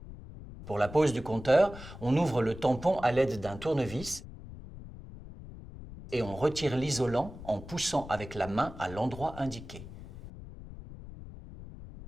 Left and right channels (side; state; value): left; noise; rumble, 14 dB below the sound